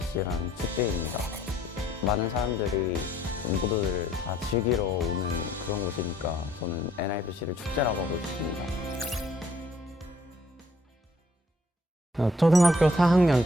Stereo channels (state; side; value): normal; both; correlation 0.63